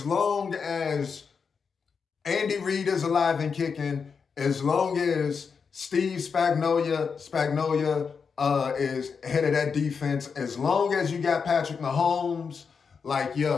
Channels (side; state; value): right; quieter; 5.8 dB